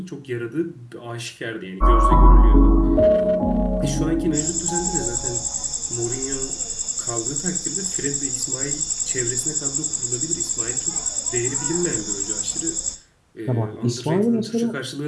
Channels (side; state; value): both; identical; correlation 1.00